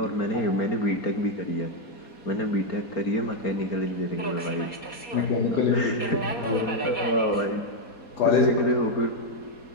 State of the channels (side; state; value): right; late; 4.2 ms